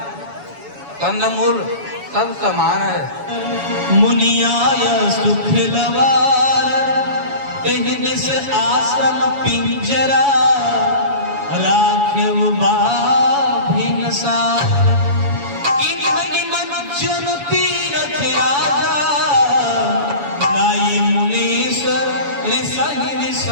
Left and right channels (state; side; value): late; left; 7.1 ms